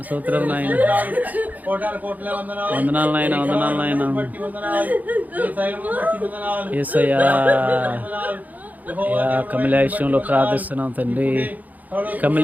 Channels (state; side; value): late; left; 0.080 ms